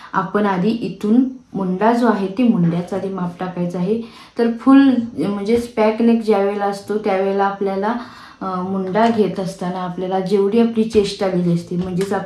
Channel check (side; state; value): both; identical; correlation 1.00